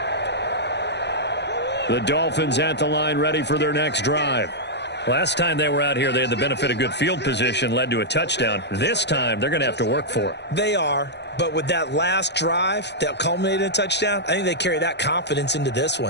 The Dolphins at the line ready for their next drive. Last time they were out here, they had the benefit of good field position, led to a touchdown. This time, they're going to have to work for it. They are, but with that last drive that culminated in a touchdown, I think they carry that confidence into this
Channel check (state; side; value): late; right; 0.50 ms